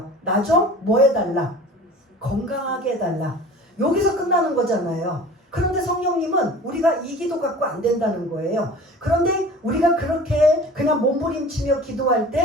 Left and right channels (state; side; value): normal; both; correlation 0.41